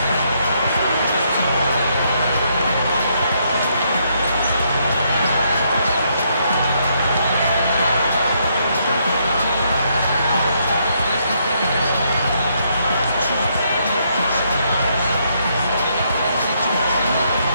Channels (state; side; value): inverted; both; correlation -0.74